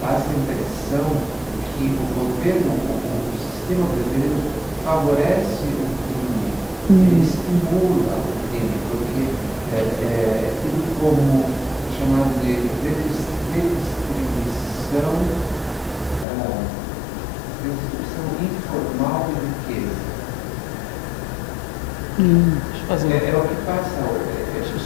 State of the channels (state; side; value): drops out; right; at 16.2 s